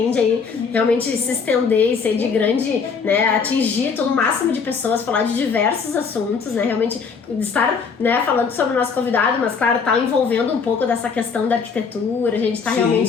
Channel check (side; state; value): right; quieter; 5.6 dB